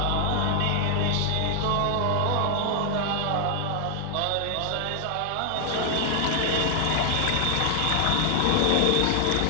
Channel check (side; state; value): both; different; correlation 0.00